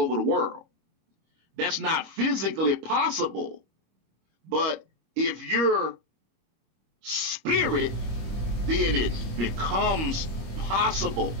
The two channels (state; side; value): late; left; 25 ms